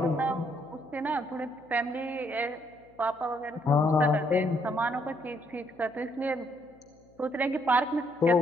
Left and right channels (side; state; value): left; noise; hum, 29 dB below the sound